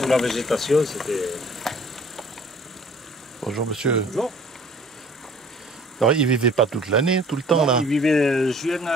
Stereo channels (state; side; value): normal; both; correlation 0.52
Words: la végétation, c'était... Bonjour monsieur. Bonjour. Alors il vivait pas toute l'année, tout le temps là? Il vivait juillet,